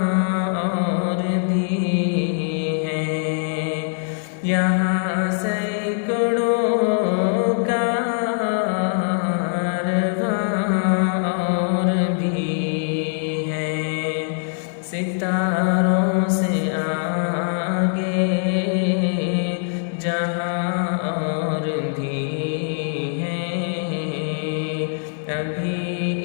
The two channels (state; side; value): silent; right; 64 dB below the other